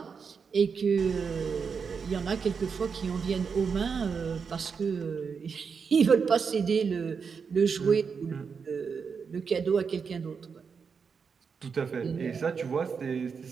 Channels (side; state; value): left; quieter; 5.8 dB